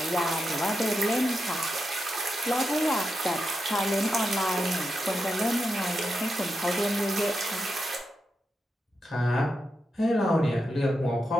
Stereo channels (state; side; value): normal; both; correlation 0.87